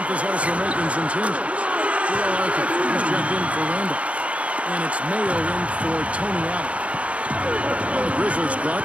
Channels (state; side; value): late; left; 0.064 ms